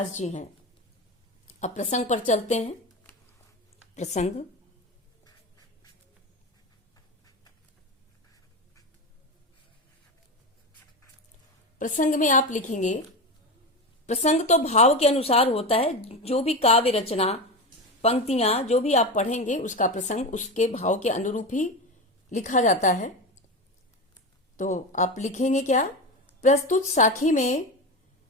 जी हैं। अब प्रसंग पर चलते हैं। प्रसंग, प्रसंग में आप लिखेंगे, प्रसंग तो भाव के अनुसार होता है। जो भी काव्य रचना, पंक्तियां जो भी आप पढ़ेंगे उसका प्रसंग उसके भाव के अनुरूप ही लिखा जाता है। तो आप लिखेंगे क्या? प्रस्तुत साखी में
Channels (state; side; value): normal; both; correlation 0.20